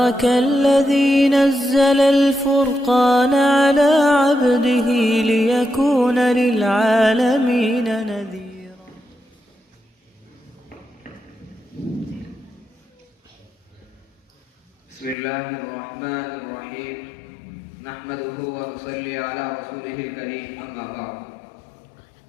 الذي نزل الفرقان على عبده ليكون للعالمين نذيرا. بسم الله الرحمن الرحيم نحمده ونصلي على رسوله الكريم أما بعد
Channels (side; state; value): right; drops out; at 15.2 s